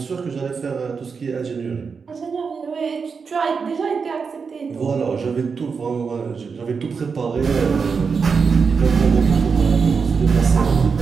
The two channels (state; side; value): quieter; left; 5.4 dB